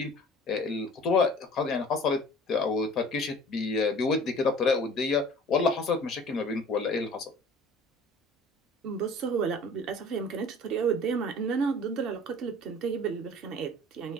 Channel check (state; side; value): normal; both; correlation 0.46